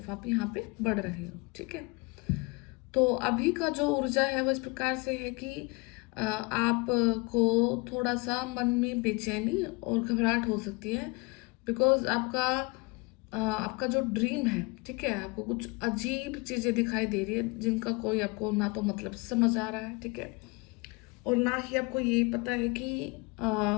आप यहाँ पे बढ़ रहे हो। ठीक है, तो अभी का जो ऊर्जा है वो इस प्रकार से है कि आप को थोड़ा सा मन में बेचैनी और घबराहट हो सकती है। बिकॉज आपका जो ड्रीम है, ठीक है, आपको कुछ अजीब चीज़ें दिखाई दे रही है जिनका कोई आपको ना तो मतलब समझ आ रहा है, ठीक है, और ना ही आपको ये पता है कि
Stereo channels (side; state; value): right; quieter; 27.4 dB